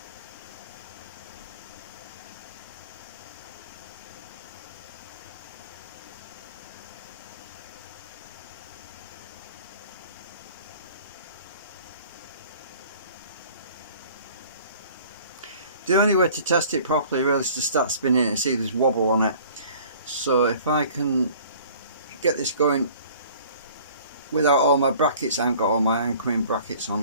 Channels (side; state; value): both; inverted; correlation -0.50